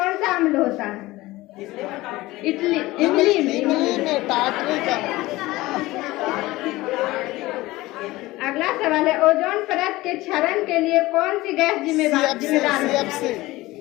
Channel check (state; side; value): quieter; right; 19.0 dB